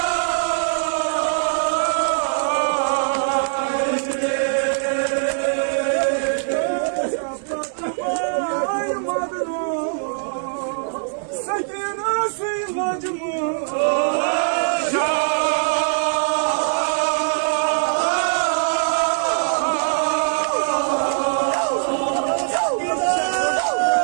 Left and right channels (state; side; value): silent; left; 65 dB below the other